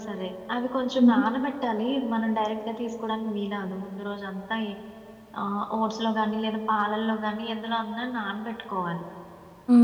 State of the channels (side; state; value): both; identical; correlation 1.00